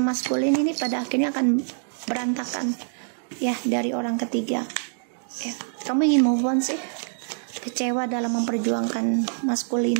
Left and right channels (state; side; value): silent; left; digital silence